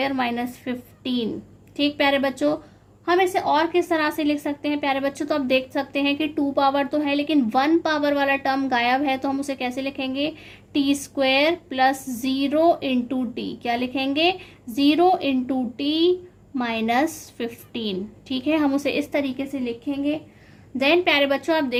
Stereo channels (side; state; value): both; identical; correlation 1.00